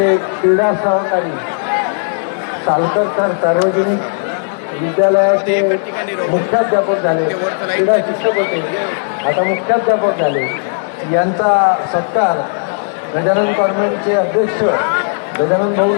क्रीडा सहकारी सालकर सार्वजनिक विद्यालयाचे मुख्याध्यापक झाले, क्रीडा शिक्षक होते, आता मुख्याध्यापक झाले. यांचा सत्कार गजानन कॉन्व्हेंटचे अध्यक्ष गजानन भाऊ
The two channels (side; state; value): right; silent; 63 dB below the other